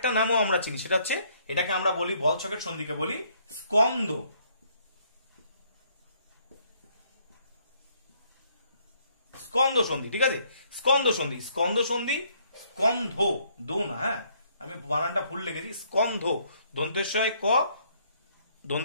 নামও আমরা চিনি, সেটা হচ্ছে এটাকে আমরা বলি বল সকেট সন্ধিকে বলি স্কন্দ। স্কন্দ সন্ধি, ঠিক আছে, স্কন্দ সন্ধি, স্কন্দ সন্ধি, স্কন্ধ দো না, হ্যাঁ আমি বানানটা ভুল লিখেছি, স্কন্ধ দন্তেশ্বয় ক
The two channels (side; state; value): both; inverted; correlation -0.67